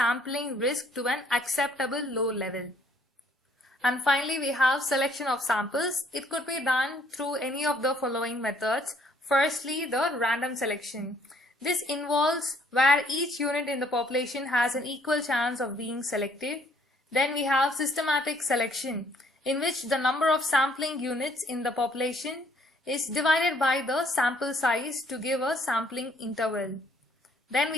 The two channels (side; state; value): both; normal; correlation 0.64